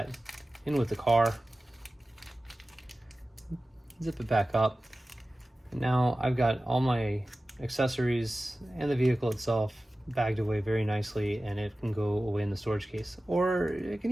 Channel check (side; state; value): both; normal; correlation 0.96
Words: in with the car, zip it back up, and now I've got all my accessories and the vehicle itself bagged away very nicely, and it can go away in the storage case, or it can